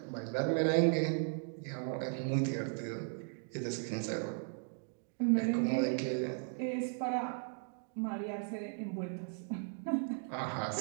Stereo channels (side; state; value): left; silent; 53 dB below the other